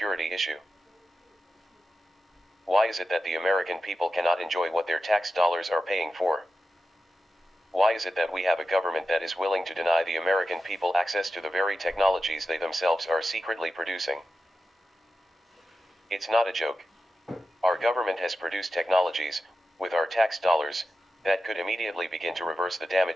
issue? Why is it that the American people cannot enjoy what their tax dollars are paying for? Why is it that we have a government that is willing to deny the American people access to the very technologies they themselves are secretly producing? It's not a joke. Our government has produced technologies, with our tax dollars, that could immediately begin to reverse the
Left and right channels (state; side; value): normal; both; correlation 0.91